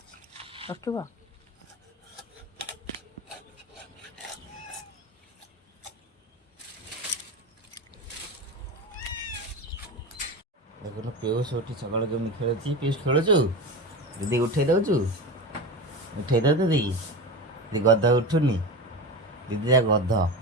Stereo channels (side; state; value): both; normal; correlation 0.25